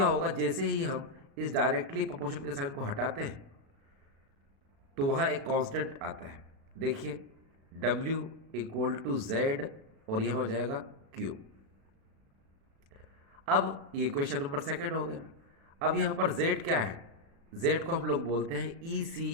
होगा, जैसे ही हम इस डायरेक्टली प्रोपोर्शन के साइन को हटाते हैं तो वहाँ एक कांस्टेंट आता है। देखिए W इक्वल टू Z और यह हो जाएगा Q। अब ये क्वेश्चन नंबर सेकंड हो गया। अब यहाँ पर Z क्या है? Z को हम लोग बोलते हैं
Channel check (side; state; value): left; late; 36 ms